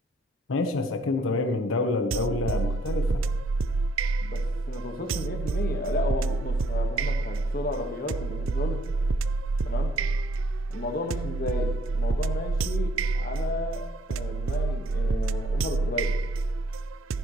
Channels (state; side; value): normal; both; correlation 0.65